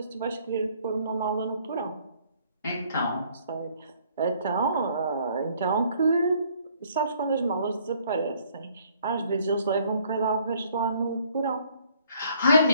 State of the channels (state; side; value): inverted; both; correlation -0.62